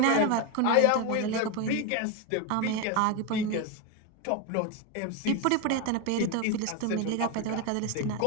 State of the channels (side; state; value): both; different; correlation 0.03